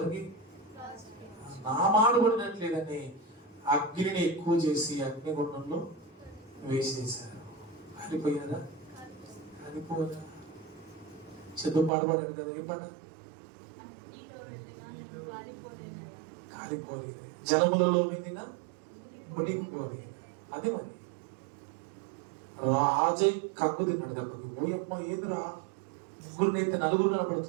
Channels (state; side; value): drops out; left; at 11.9 s